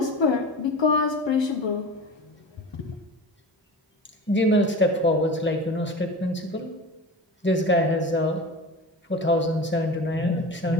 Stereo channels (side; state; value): both; normal; correlation 0.32